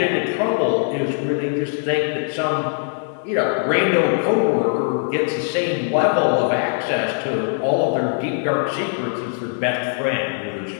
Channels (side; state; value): right; silent; digital silence